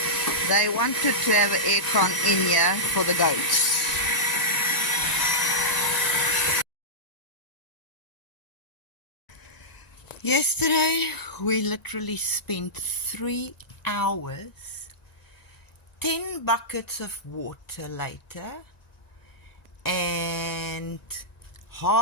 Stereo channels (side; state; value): right; late; 1.9 ms